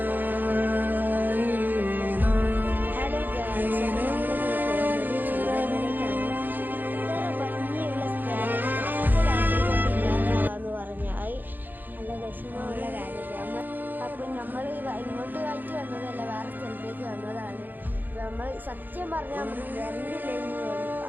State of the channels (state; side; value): late; left; 0.088 ms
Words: വിഷമമുള്ള കാര്യമാണ്. അപ്പം നമ്മൾ ഇങ്ങോട്ട് ആയിട്ട് വന്നതല്ല, വേറെ സ്ഥലത്തേക്ക് വന്നതാണ്. നമ്മൾ സത്യം പറഞ്ഞാൽ നമ്മൾ വരണ്ടില്ലെന്ന് തോന്നി.